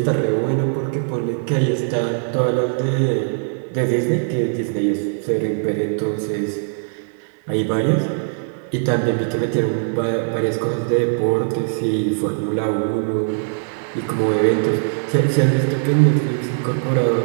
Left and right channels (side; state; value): left; silent; 55 dB below the other